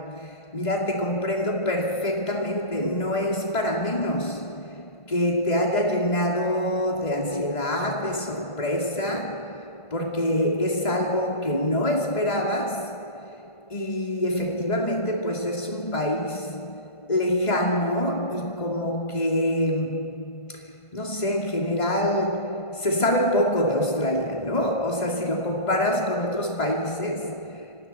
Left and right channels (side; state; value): right; late; 1.5 ms